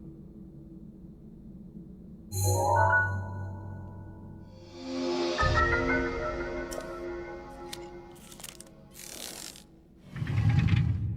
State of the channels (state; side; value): identical; both; correlation 1.00